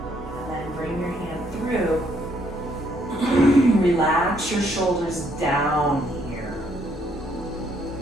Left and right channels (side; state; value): both; normal; correlation 0.70